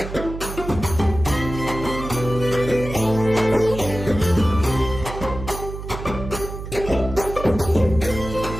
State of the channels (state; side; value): noise; right; hum, 9 dB below the sound